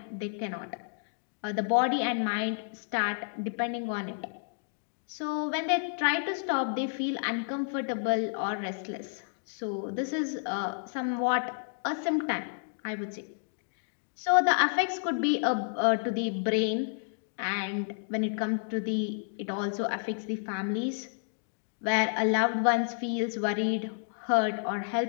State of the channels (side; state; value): right; silent; digital silence